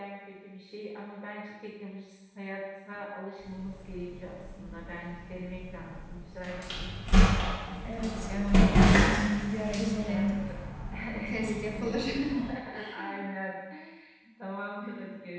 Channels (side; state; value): both; identical; correlation 1.00